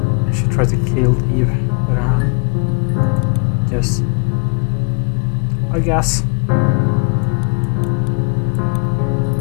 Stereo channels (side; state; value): right; quieter; 38.0 dB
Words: she tried to kill Eve, but yes, I guess.